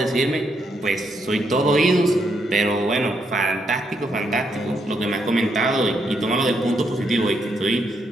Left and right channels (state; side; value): normal; both; correlation 0.77